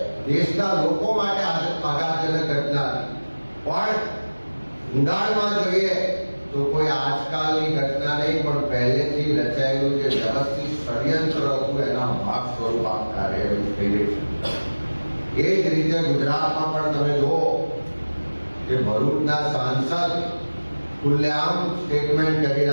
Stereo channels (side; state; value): both; inverted; correlation -1.00